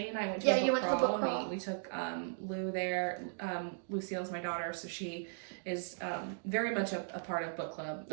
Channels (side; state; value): left; silent; digital silence